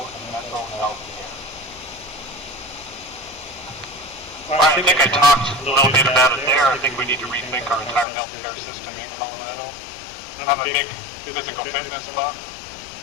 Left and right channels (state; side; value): drops out; right; at 8.1 s